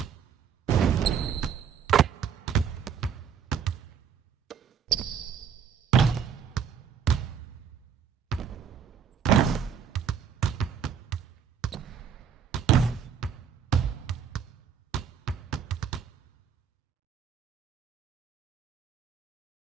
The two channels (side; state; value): left; quieter; 7.7 dB